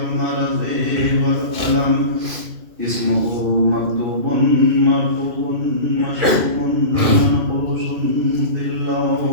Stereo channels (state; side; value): late; left; 2.4 ms